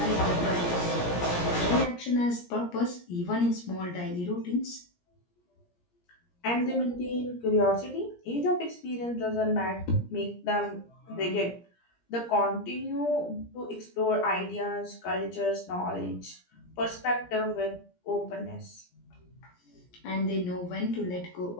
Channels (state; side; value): late; right; 17 ms